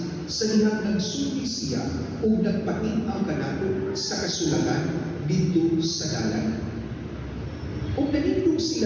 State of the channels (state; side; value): identical; both; correlation 1.00